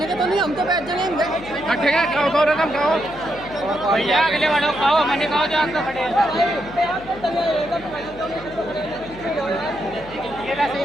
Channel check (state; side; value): noise; left; hum, 18 dB below the sound